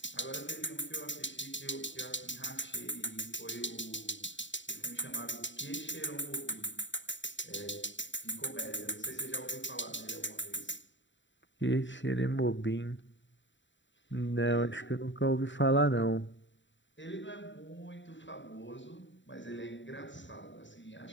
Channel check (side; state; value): right; late; 0.54 ms